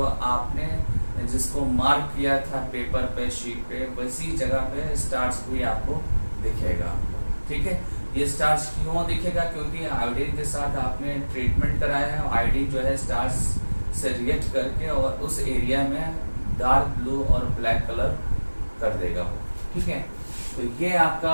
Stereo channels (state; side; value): inverted; both; correlation -1.00